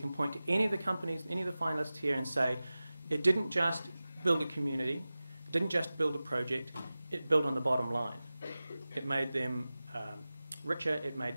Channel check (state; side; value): inverted; both; correlation -0.97